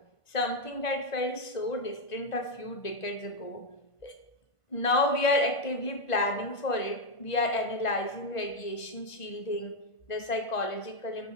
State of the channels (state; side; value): late; right; 1.5 ms